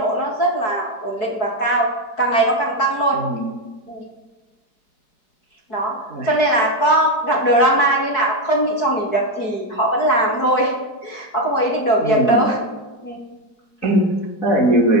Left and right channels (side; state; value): right; late; 4.6 ms